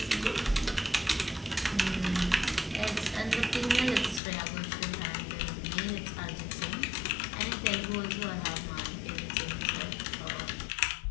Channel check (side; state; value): right; drops out; at 4.2 s